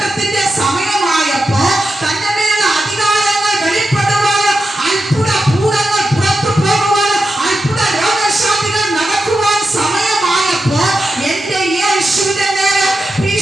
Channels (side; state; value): both; normal; correlation 0.89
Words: സമയമായപ്പോൾ, തന്റെ മേലുള്ള അധികാരങ്ങൾ വെളിപ്പെടുവാൻ, അത്ഭുത ഭൂതങ്ങൾ പുറത്തു പോകുവാൻ, അത്ഭുത രോഗശാന്തികൾ നടക്കുവാൻ സമയമായപ്പോൾ, എന്റെ യേശുവിന്റെ മേൽ